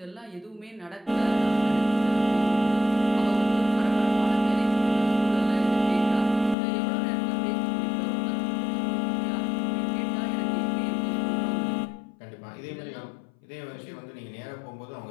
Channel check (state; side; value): drops out; right; at 6.6 s